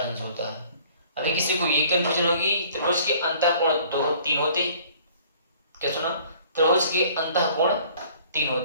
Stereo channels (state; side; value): inverted; both; correlation -0.54